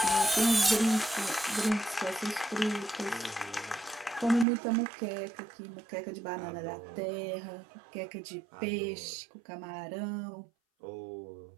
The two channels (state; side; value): drops out; left; at 4.5 s